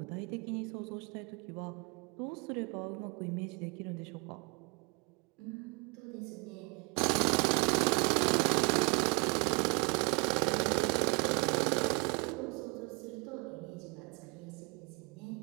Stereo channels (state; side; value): quieter; left; 30.5 dB